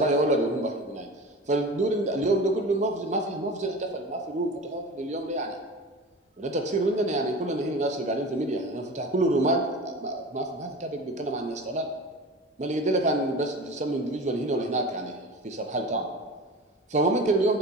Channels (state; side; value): normal; both; correlation 0.34